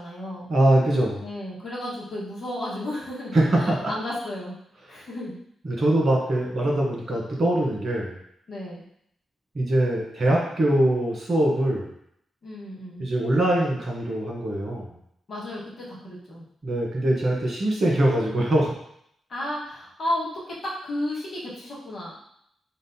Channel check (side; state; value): both; normal; correlation 0.89